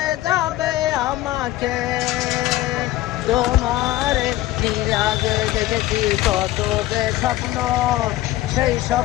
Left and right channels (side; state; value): right; quieter; 15.6 dB